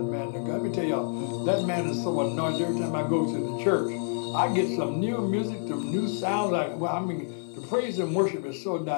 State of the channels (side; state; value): right; silent; 59 dB below the other